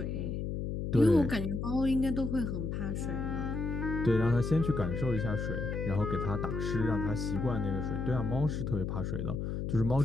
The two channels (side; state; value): left; noise; hum, 3 dB below the sound